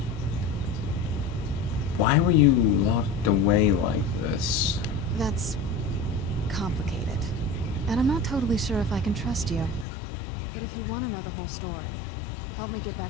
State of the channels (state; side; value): drops out; right; at 9.9 s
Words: Why were you locked away like this? That's complicated. And I'm not totally sure if I can trust you. But if you want to know the whole story, help me get